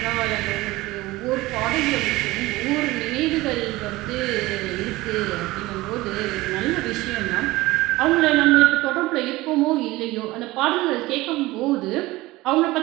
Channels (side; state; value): left; quieter; 19.4 dB